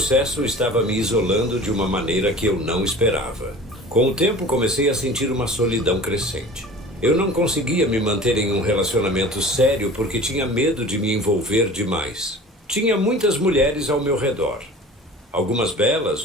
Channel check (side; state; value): both; normal; correlation 0.40